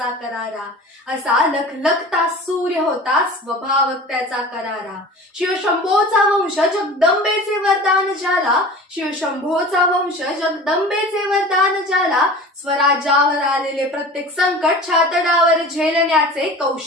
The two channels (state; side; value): normal; both; correlation 0.38